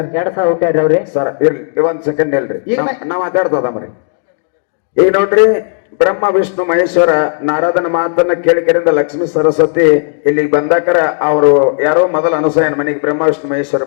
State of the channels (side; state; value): right; silent; 66 dB below the other